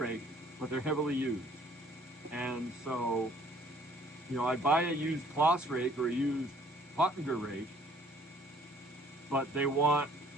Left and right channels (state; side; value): normal; both; correlation 0.58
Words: but they're heavily used. And so, I buy a used Kloss rake or a used Pottinger rake, but they want,